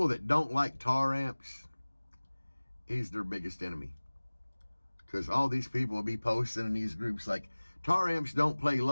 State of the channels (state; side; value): inverted; both; correlation -1.00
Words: that don't like tar amps, he's their biggest enemy. Because all these people will be posting in these groups like, tar amps don't play